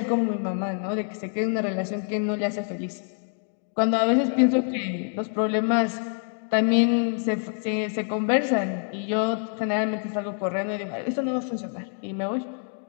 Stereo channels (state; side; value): silent; right; 55 dB below the other